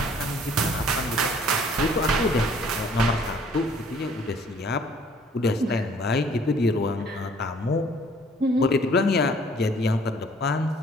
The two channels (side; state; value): both; normal; correlation 0.57